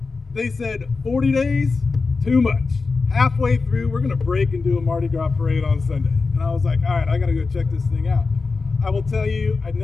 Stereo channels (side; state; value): right; quieter; 4.2 dB